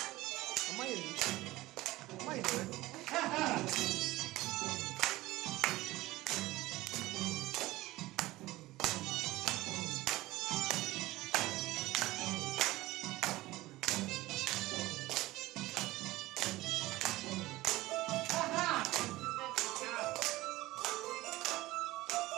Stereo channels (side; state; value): left; quieter; 18.2 dB